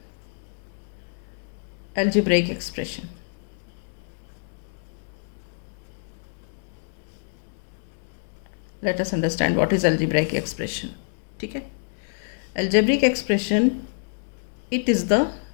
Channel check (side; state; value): right; silent; digital silence